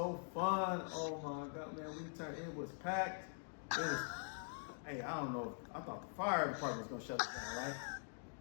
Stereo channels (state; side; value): silent; right; digital silence